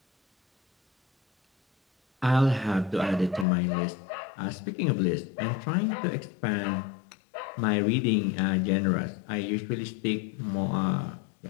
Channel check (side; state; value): right; drops out; at 3.5 s